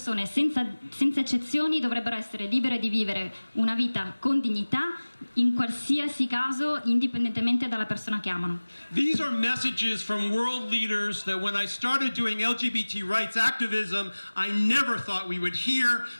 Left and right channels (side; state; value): both; inverted; correlation -1.00